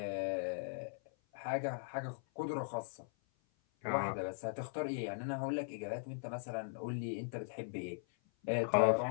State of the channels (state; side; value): silent; right; 52 dB below the other